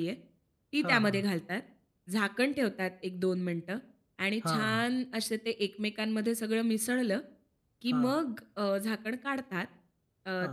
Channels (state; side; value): identical; both; correlation 1.00